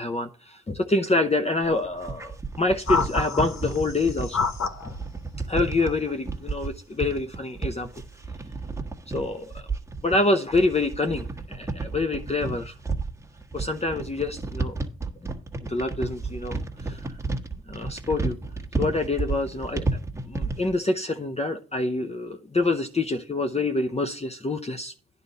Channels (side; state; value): both; normal; correlation 0.57